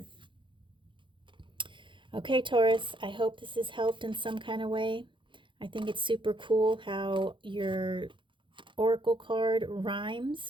Okay, Taurus, I hope this has helped in some kind of way. I think it's super cool how your oracle card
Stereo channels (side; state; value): left; late; 0.24 ms